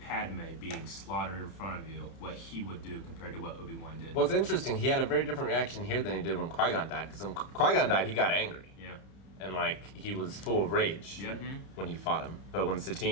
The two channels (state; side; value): late; right; 30 ms